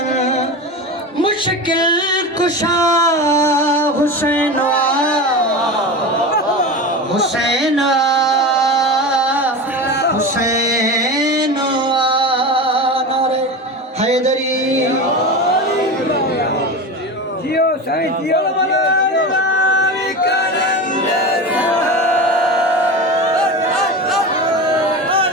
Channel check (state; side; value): normal; both; correlation 0.26